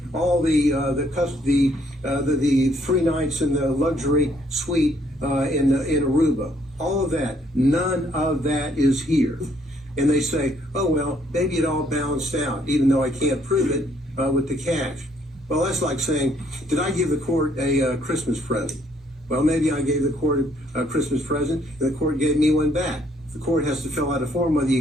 all the 3 nights in the luxury suite in Aruba. All of that. None of that is here. And they say, oh, well, maybe it all balanced out, even though I can't prove it with the cash. Well, that's like saying, did I give the court a Christmas present? Well, maybe I gave the court a Christmas present, and the court gave me one back. The court has to fill out a form whether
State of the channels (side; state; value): both; normal; correlation 0.67